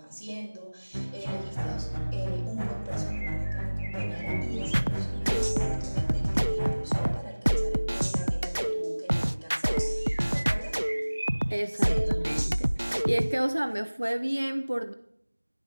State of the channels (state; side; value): inverted; both; correlation -1.00